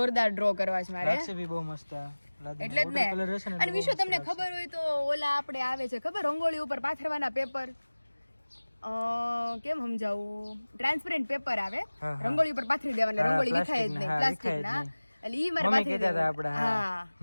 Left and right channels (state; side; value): inverted; both; correlation -1.00